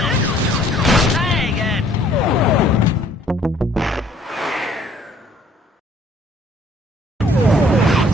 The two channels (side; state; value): both; normal; correlation 0.60